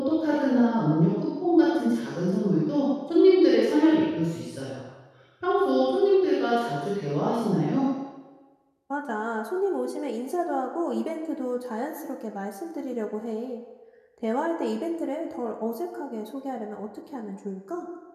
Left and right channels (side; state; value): both; identical; correlation 1.00